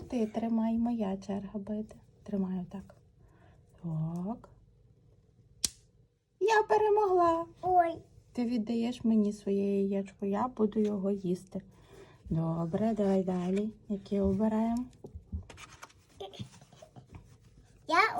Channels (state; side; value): identical; both; correlation 1.00